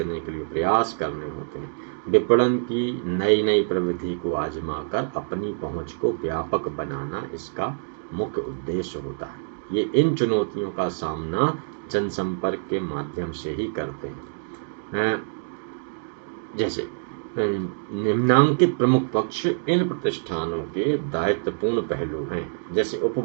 के लिए प्रयास करने होते हैं। विपणन की नई नई प्रविधि को आजमा कर अपनी पहुंच को व्यापक बनाना इसका मुख्य उद्देश्य होता है। ये इन चुनौतियों का सामना जनसंपर्क के माध्यम से ही करते हैं। जैसे निम्नांकित प्रमुख पक्ष इन प्रतिष्ठानों के दायित्वपूर्ण पहलू हैं। जैसे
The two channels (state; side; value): silent; left; digital silence